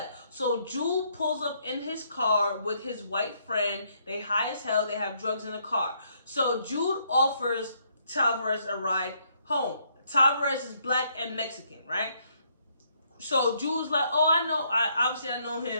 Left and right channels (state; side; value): inverted; both; correlation -0.71